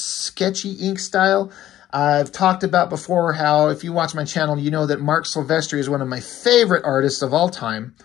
ink style. I've talked about before how, if you watch my channel, you know that Mark Silvestri is one of my favorite artists of all time.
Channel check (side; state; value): right; quieter; 13.0 dB